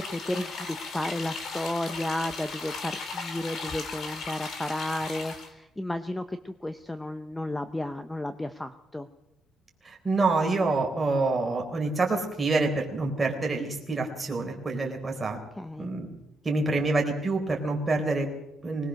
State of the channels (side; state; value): both; normal; correlation 0.83